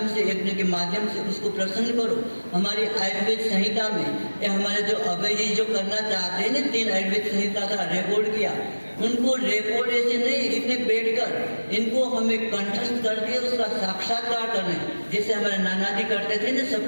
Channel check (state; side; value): inverted; both; correlation -1.00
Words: से, यज्ञ के माध्यम से उसको प्रसन्न करो। हमारी आयुर्वेद संहिता में हमारे जो अभय जी जो करना चाहते हैं ना, 3 आयुर्वेद संहिता का रिकॉर्ड किया, उनको रिकॉर्ड ऐसे नहीं, इतने बैठकर इनको हमें कंठस्थ करके उसका साक्षात्कार करना। जैसे हमारे नाना जी करते थे ना,